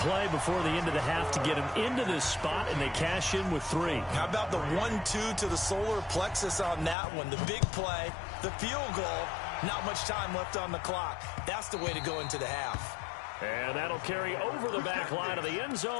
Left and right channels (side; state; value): right; drops out; at 7.0 s